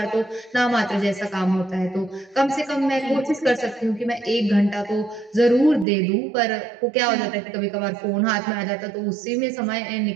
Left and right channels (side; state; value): left; drops out; at 5.9 s